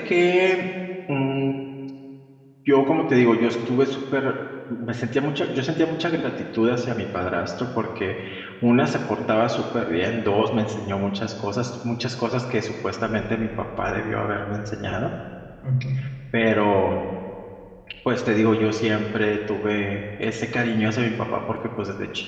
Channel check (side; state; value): both; identical; correlation 1.00